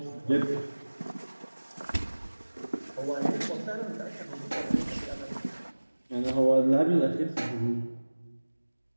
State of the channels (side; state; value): both; inverted; correlation -1.00